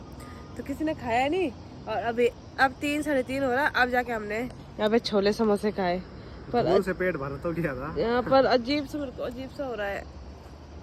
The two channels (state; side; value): identical; both; correlation 1.00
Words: तो किसी ने खाया नहीं। और अभी अब 3-3:30 हो रहा, अब जाके हमने यहाँ पे छोले समोसे खाए। पर से पेट भर तो गया था यहाँ पर अजीब सा, मेरे को अजीब सा हो रहा है,